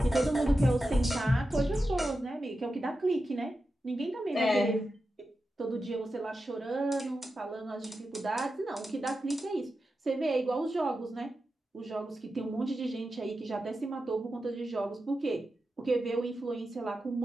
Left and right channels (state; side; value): normal; both; correlation 0.90